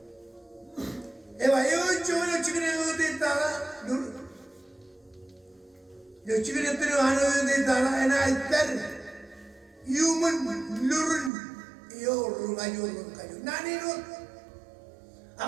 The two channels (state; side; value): drops out; left; at 11.3 s